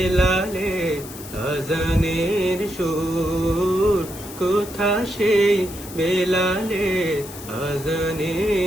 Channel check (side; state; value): left; noise; hiss, 14 dB below the sound